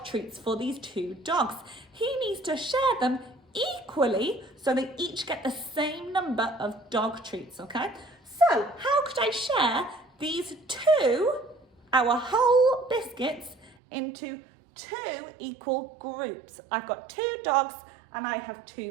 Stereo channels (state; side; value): drops out; left; at 13.8 s